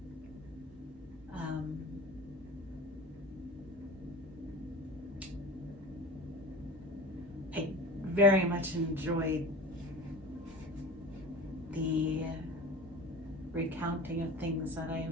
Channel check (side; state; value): both; normal; correlation 0.35